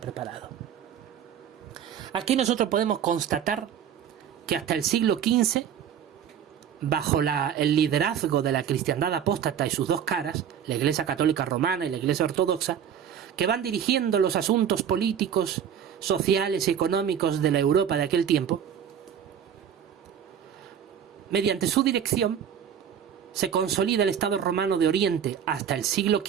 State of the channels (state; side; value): quieter; left; 8.7 dB